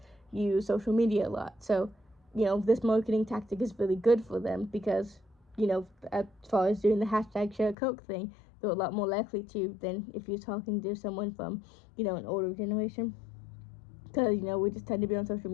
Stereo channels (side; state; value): right; drops out; at 7.8 s